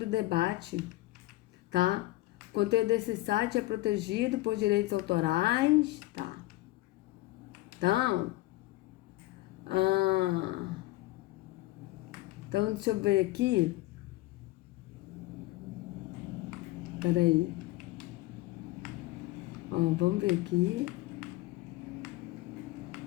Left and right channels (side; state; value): right; quieter; 18.3 dB